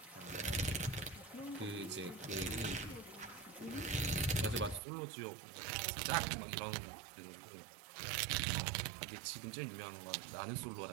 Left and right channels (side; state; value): left; drops out; at 4.8 s